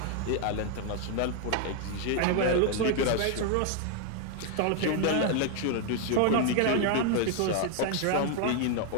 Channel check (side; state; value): both; different; correlation 0.00